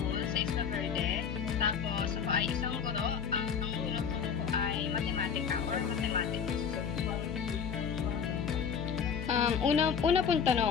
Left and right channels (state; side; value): quieter; right; 7.0 dB